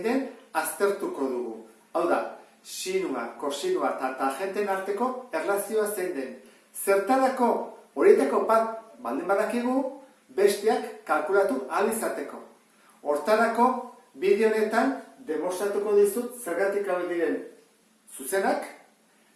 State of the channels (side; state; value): both; identical; correlation 1.00